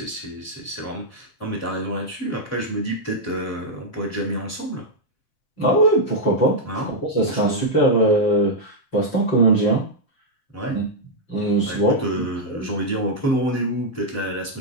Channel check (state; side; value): late; right; 7.6 ms